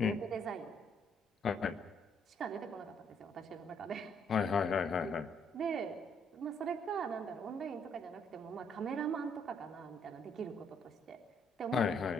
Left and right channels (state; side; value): normal; both; correlation 0.69